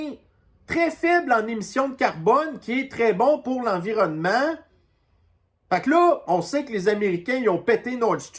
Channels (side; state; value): both; identical; correlation 1.00